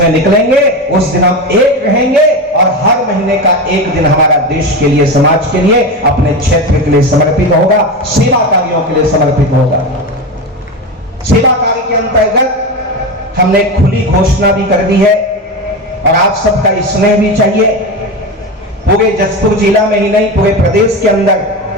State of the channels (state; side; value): normal; both; correlation 0.20